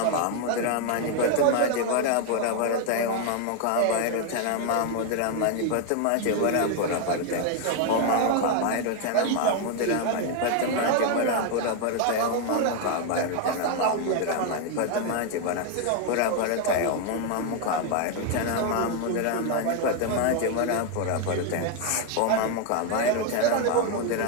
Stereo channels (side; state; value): both; different; correlation 0.01